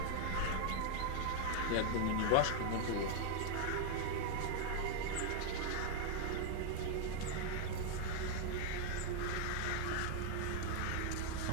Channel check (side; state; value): both; different; correlation 0.00